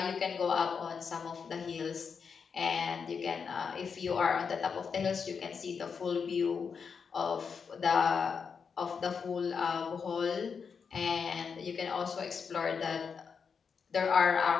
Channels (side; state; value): right; quieter; 6.0 dB